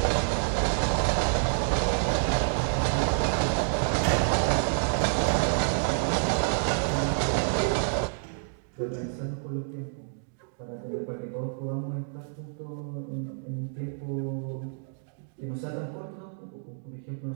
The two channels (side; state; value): left; silent; digital silence